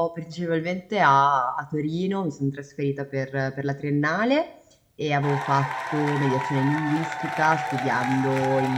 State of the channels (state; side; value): identical; both; correlation 1.00